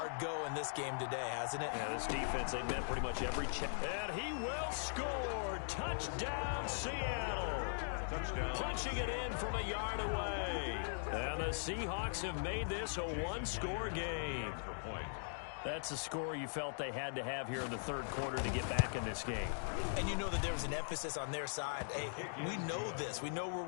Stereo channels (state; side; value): silent; right; digital silence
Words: go in this game today, hasn't it? Yeah, this defense, they met pretty much every check. And he will score. Touchdown, Seattle. Touchdown. Punching it in from a yard away. And the Seahawks have made this a one-score game. That's a score you felt they had to have here in the third quarter to get back in this game. And you know that there was an emphasis on their side. Hey, we know this. We know where